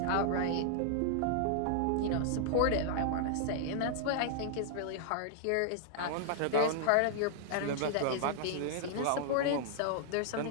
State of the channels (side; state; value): both; different; correlation -0.01